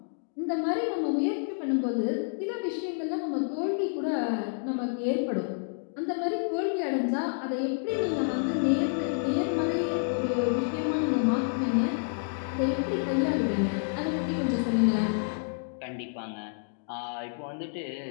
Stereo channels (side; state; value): right; silent; digital silence